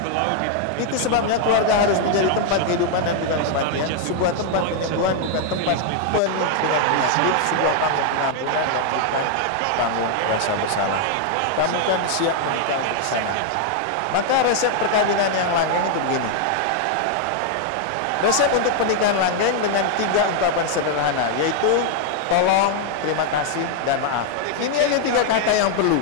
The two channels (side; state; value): both; different; correlation 0.00